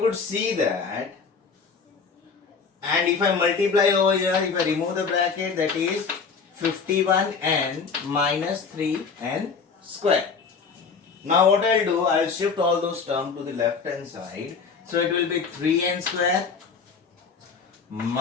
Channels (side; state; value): right; quieter; 5.3 dB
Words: see that, and if I multiply over here, if I remove the bracket, that is 51n minus 3n square. Now what I'll do, I'll shift all those terms to the left hand side. So it will be 3n square